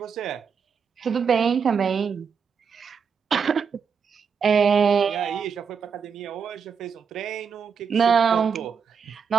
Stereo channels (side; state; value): left; quieter; 6.4 dB